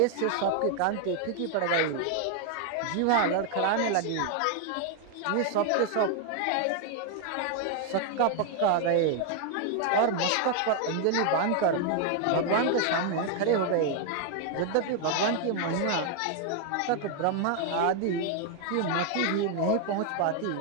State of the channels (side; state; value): both; different; correlation 0.01